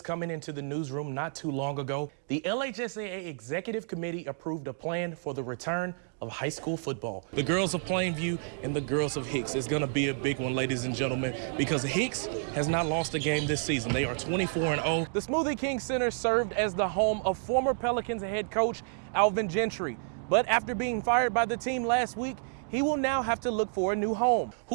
coming into the newsroom not too long ago. The LHSAA Executive Committee approved a plan for the return of high school football. The girls of Plainview and the girls of Hicks is going to be a big one, ladies and gentlemen, because Hicks has not lost a game this season. They are 24-0. The Smoothie King Center served as the home of former Pelicans head coach Alvin Gentry. But after being fired by the team last week, he will now have to look for a new home.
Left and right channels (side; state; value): left; silent; digital silence